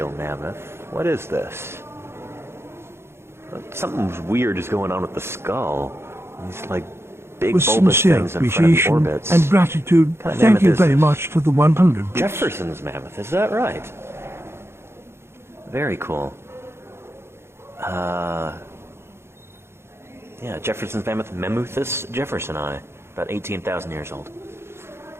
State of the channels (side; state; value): left; late; 0.12 ms